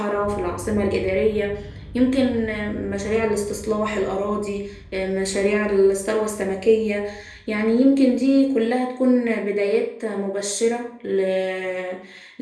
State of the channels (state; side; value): identical; both; correlation 1.00